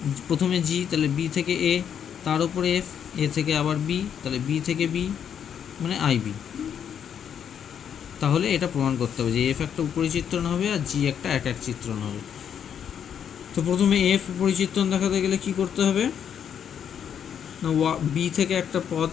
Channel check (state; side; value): quieter; right; 8.4 dB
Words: প্রথমে জি, তাহলে বি থেকে এ, তার উপরে এফ, এ থেকে আবার বি, তাহলে বি থেকে বি মানে আই বি। তাহলে এটা প্রমাণ করতে হবে যে এফ একটা উপরি চিত্রণ হবে আর জি একটা এক এক চিত্রণ হবে। তো প্রথমে এফ উপরি চিত্রণ দেখাতে গেলে কি করতে হবে না বি থেকে একটা পদ